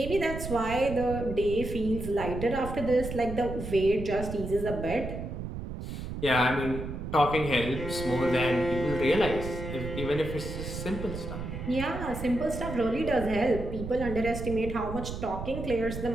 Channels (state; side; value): noise; right; rumble, 7 dB below the sound